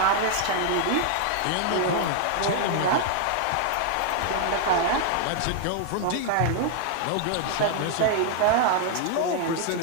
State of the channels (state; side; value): different; both; correlation 0.00